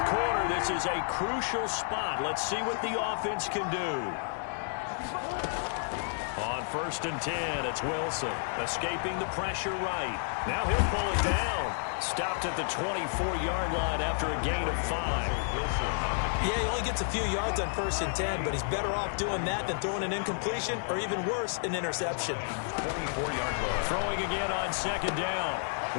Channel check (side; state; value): right; silent; 57 dB below the other